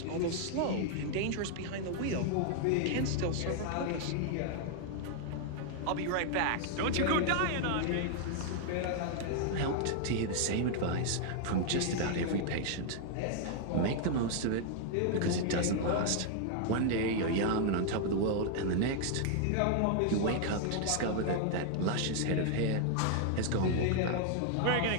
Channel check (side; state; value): both; different; correlation 0.00